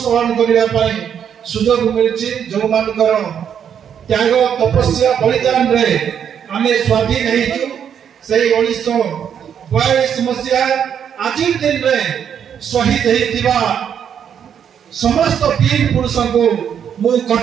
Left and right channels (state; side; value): quieter; left; 8.4 dB